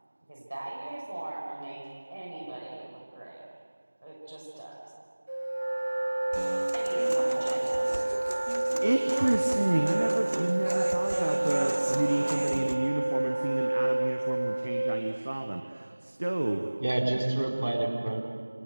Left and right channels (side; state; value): both; inverted; correlation -1.00